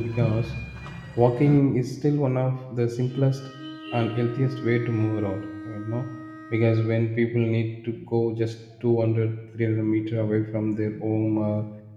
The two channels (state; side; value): identical; both; correlation 1.00